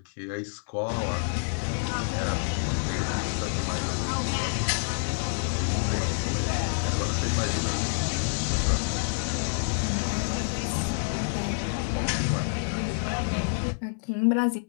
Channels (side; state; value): right; silent; digital silence